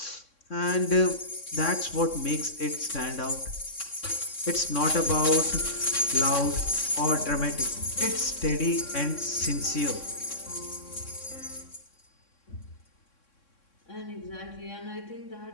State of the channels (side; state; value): right; late; 3.6 ms